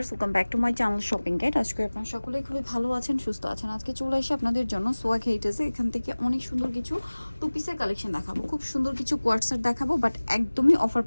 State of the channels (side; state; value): both; inverted; correlation -1.00